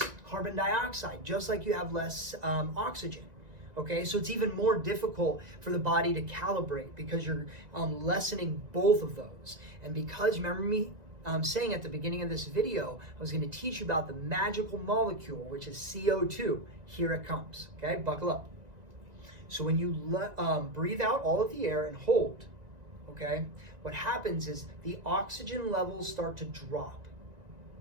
carbon dioxide, just like you have less oxygen. Okay, so it's even more difficult for the body to calibrate because you're lessening both of those. And because, remember me saying at the beginning of this video, I was going to teach you about the magical molecule, which is CO2. Here it comes. Okay, buckle up. So when you breathe out all of the air and hold, okay, what happens is the oxygen levels start to drop.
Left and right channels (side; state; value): left; late; 1.9 ms